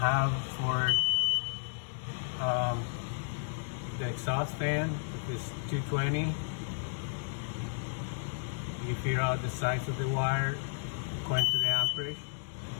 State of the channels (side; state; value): right; silent; 55 dB below the other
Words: for the exhaust fan. If it's 220, you figure out the size of the wire according to the amperage.